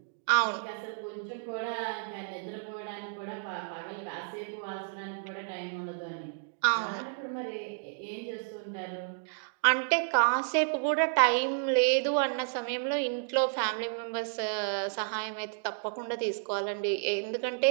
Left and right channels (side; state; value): left; silent; digital silence